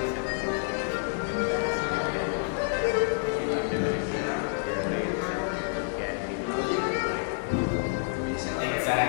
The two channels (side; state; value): right; silent; digital silence